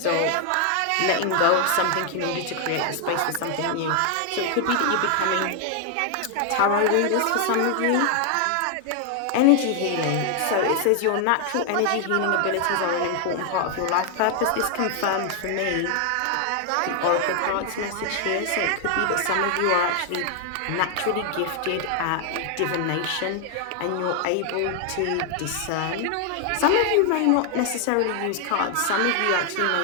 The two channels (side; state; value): both; different; correlation 0.00